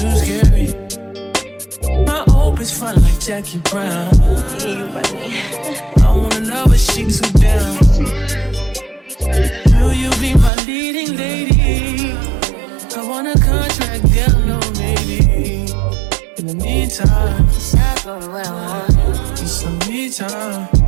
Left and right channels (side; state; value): left; drops out; at 10.5 s